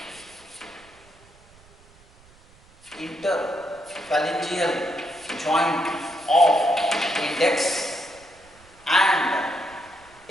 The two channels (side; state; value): right; noise; rumble, 27 dB below the sound